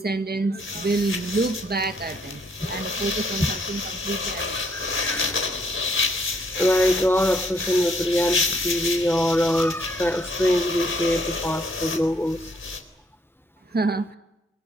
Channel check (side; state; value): both; normal; correlation 0.68